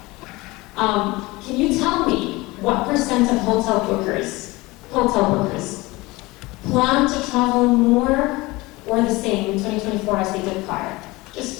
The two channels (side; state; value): right; quieter; 21.8 dB